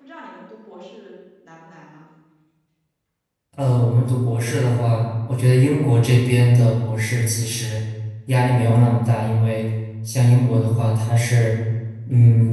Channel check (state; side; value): identical; both; correlation 1.00